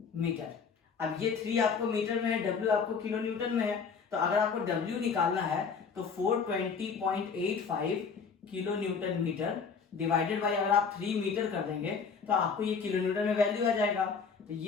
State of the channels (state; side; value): quieter; right; 5.7 dB